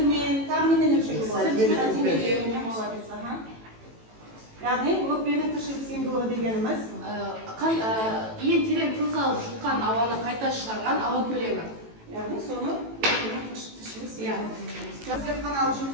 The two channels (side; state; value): left; late; 18 ms